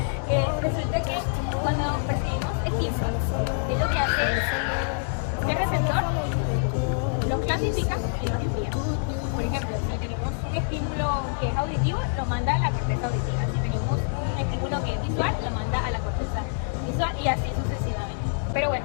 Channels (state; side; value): silent; right; digital silence